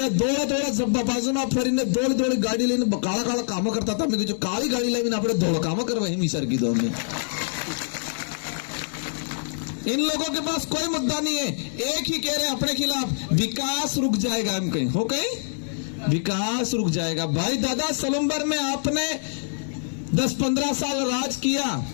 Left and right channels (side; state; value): right; silent; digital silence